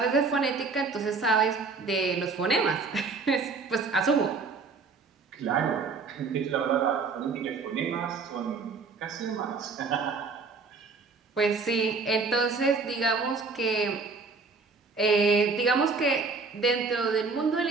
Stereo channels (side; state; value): left; quieter; 4.5 dB